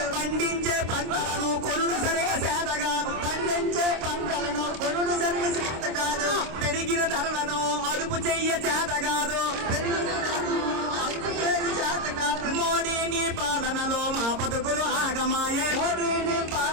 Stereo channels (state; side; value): late; left; 26 ms